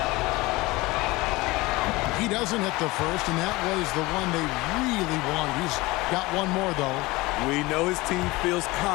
He doesn't hit the first, and that was the one they really wanted. He's got one more, though. We know his team feels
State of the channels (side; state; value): right; quieter; 21.5 dB